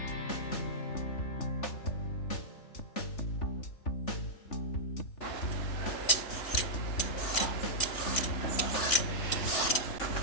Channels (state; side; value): late; right; 3.4 ms